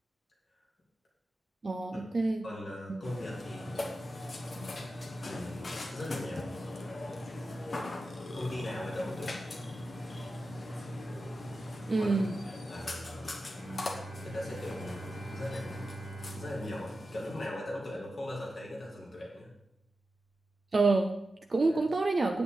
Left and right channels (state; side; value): normal; both; correlation 0.92